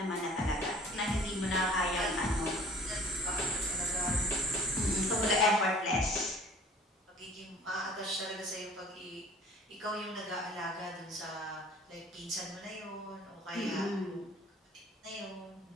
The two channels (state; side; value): normal; both; correlation 0.50